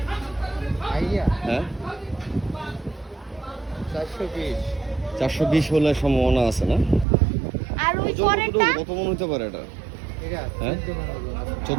হ্যাঁ 420 হলে সম্ভাবনা আছে না? আর ওই পরেরটা কত মন হতে পারে এটা? হ্যাঁ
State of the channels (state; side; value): drops out; left; at 7.1 s